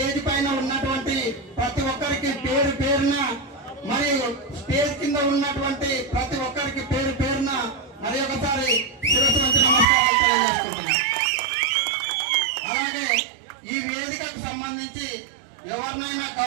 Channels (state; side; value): drops out; left; at 9.9 s